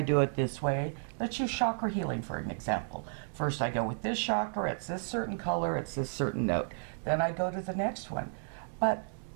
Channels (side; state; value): left; silent; digital silence